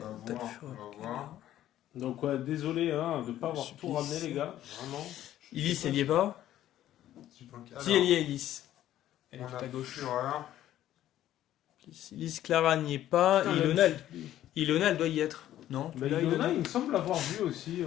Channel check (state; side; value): quieter; right; 12.7 dB